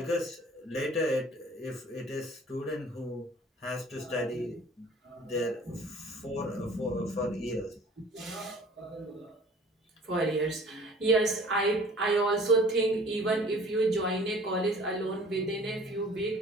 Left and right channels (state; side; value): normal; both; correlation 0.49